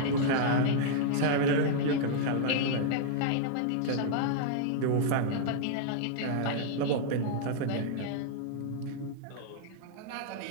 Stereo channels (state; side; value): different; both; correlation -0.01